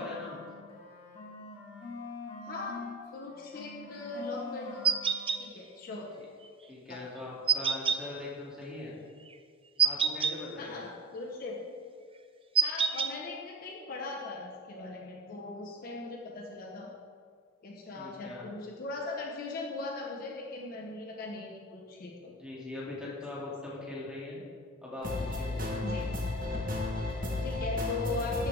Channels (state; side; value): normal; both; correlation 0.23